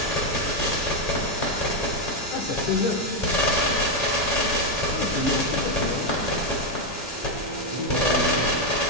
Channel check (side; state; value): both; normal; correlation 0.04